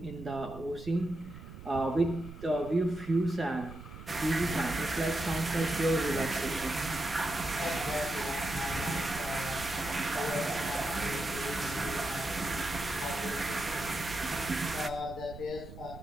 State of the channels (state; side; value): noise; right; rumble, 14 dB below the sound